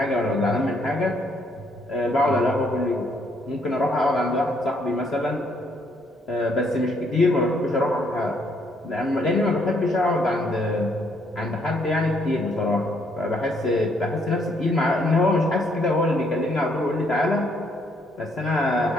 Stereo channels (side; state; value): both; normal; correlation 0.70